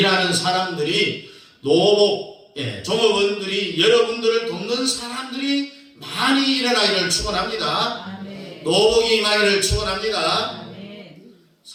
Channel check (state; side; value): identical; both; correlation 1.00